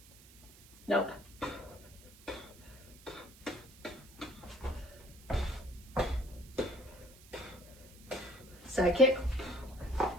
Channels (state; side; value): noise; right; hiss, 22 dB below the sound